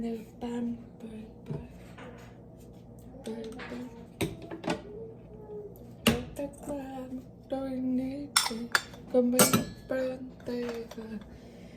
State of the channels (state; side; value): identical; both; correlation 1.00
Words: a band tất cả tôi need có mấy bên tay